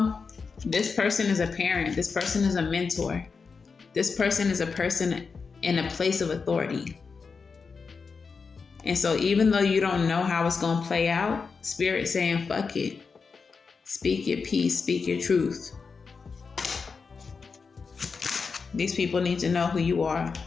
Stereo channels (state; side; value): quieter; right; 5.1 dB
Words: this person is a parent. This person is a mentor. This person is a person in a place of authority. And so even though you don't know how it's going to play out, Spirit's saying, fuck it. Speak your peace. Speak your truth. These people need to know who you are.